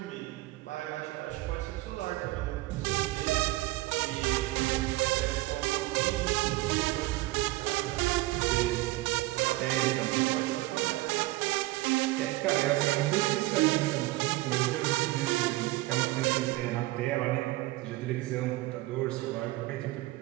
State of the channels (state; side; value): quieter; left; 18.9 dB